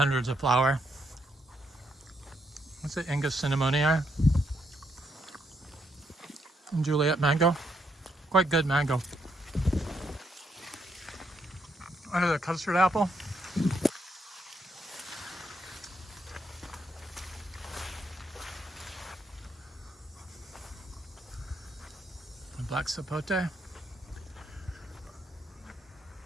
of flower. What's it, Ingus cinnamonii? And Juliet mango. Quite good mango. Under the custard apple. The black sapote.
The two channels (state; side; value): normal; both; correlation 0.76